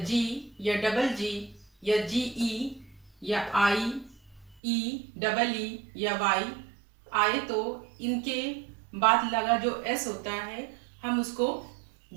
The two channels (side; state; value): left; drops out; at 4.6 s